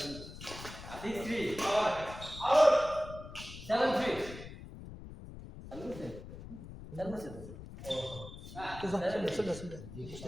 তো যাচ্ছে চলে চলে বুঝতে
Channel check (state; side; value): noise; left; rumble, 13 dB below the sound